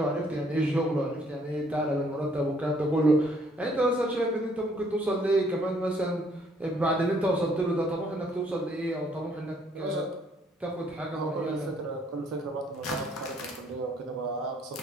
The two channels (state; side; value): normal; both; correlation 0.65